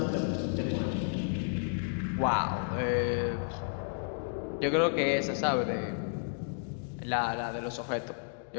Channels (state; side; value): silent; right; digital silence